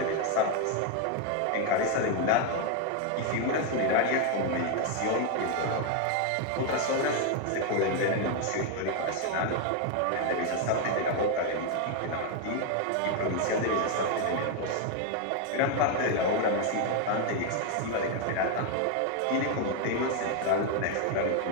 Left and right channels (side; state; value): both; different; correlation 0.01